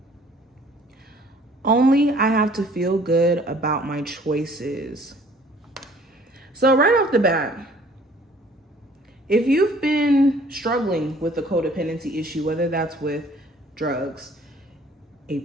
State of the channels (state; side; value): normal; both; correlation 0.55